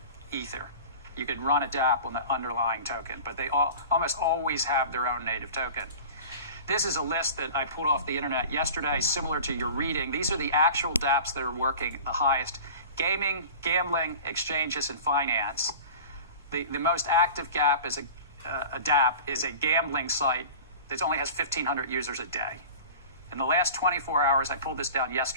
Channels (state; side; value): inverted; both; correlation -0.38